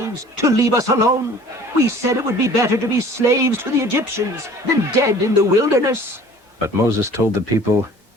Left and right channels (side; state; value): both; normal; correlation 0.48